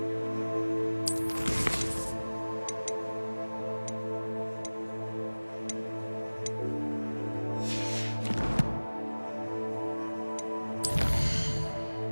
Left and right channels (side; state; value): both; inverted; correlation -1.00